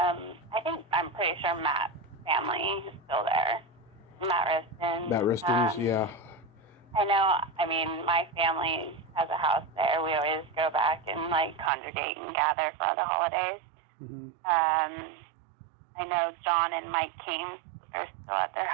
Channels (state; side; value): drops out; left; at 11.7 s